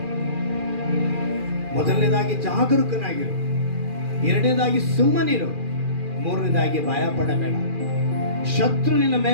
ಮೊದಲನೇದಾಗಿ ಜಾಗರೂಕನಾಗಿರು, ಎರಡನೇದಾಗಿ ಸುಮ್ಮನಿರು, ಮೂರನೇದಾಗಿ ಭಯ ಪಡಬೇಡ. ಶತ್ರು ನಿನ್ನ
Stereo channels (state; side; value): late; left; 2.4 ms